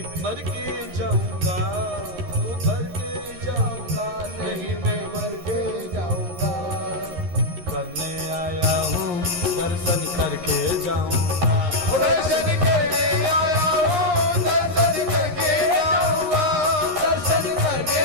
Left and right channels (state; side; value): late; left; 11 ms